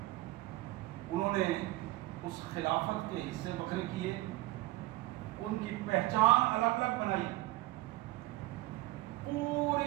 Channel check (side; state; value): left; quieter; 19.4 dB